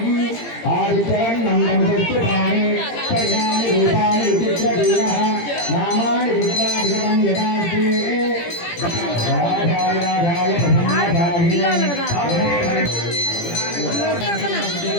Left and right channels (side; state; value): right; late; 17 ms